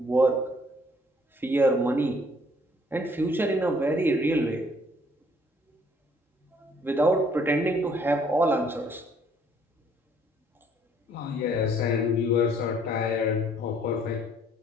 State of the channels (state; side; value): normal; both; correlation 0.62